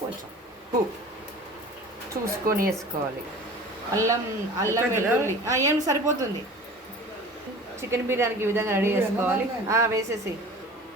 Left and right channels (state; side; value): normal; both; correlation 0.41